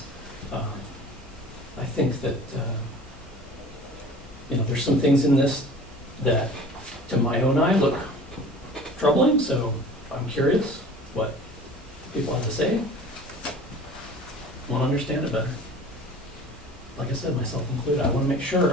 I think that, there's some things in this that, to my own eye, look troubling, so I'm curious what people have to say. Want to understand it better. Like I said, myself included, I want to make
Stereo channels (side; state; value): both; normal; correlation 0.43